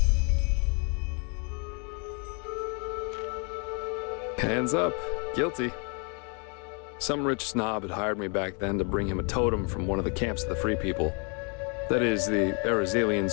Hands up. Guilty. Some rich snob had hired me back then to bring him a totem from one of the camps of the Free People. That is, the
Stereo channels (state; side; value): quieter; right; 36.6 dB